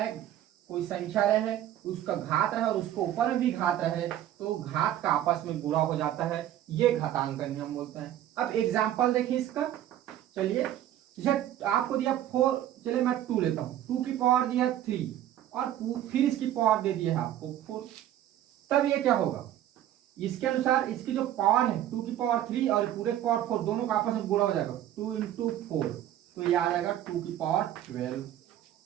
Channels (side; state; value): left; quieter; 12.1 dB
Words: कोई संख्या रहे उसका घात रहे और उसको ऊपर में भी घात रहे, तो घात का आपस में गुणा हो जाता है, ये घातांक का नियम बोलता है। अब एग्जांपल देखिए इसका, चलिए जैसे आपको दिया 4, चलिए मैं 2 लेता हूँ, 2 की पावर दिया 3 और फिर इसकी पावर दे दिया है आपको 4, तब ये क्या होगा, इसके अनुसार इसकी जो पावर है 2 की पावर 3 और पूरे पावर 4 दोनों का आपस में गुणा हो जाएगा, 2 × 4, तो ये आ जाएगा 2 की पावर 12